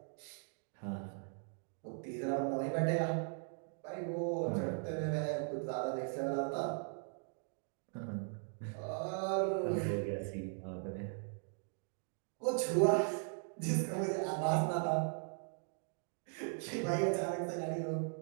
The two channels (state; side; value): silent; left; 52 dB below the other